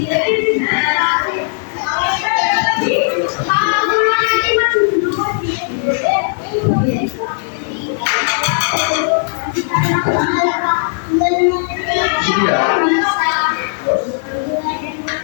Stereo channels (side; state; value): right; silent; digital silence